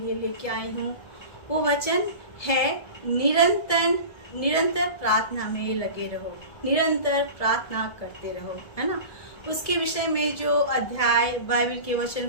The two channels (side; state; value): right; late; 1.7 ms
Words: लेके आई हूँ वो वचन है निरंतर निरंतर प्रार्थना में लगे रहो, निरंतर प्रार्थना करते रहो, है ना। उसके विषय में जो अध्याय बाइबल के वचन